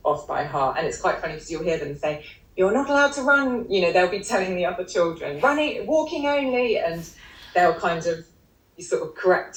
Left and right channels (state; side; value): identical; both; correlation 1.00